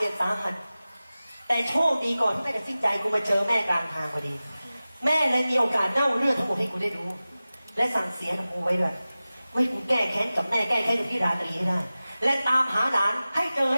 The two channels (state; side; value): inverted; both; correlation -0.96